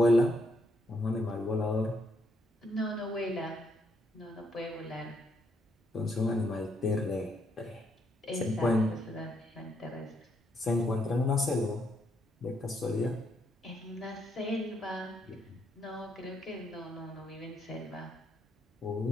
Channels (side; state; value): both; normal; correlation 0.75